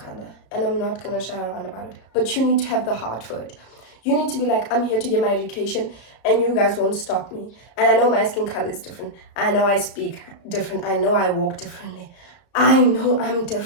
And I'm not gonna shy around about it. But you need to have the heart for it. You need to be like, I'm here to get my education, and you guys won't stop me. And I know my skin color is different. I know I speak different. I know I walk differently. I know I'm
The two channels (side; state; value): right; late; 34 ms